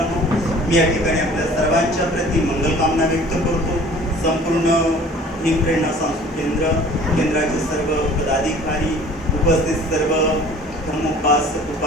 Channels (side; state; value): both; normal; correlation 0.48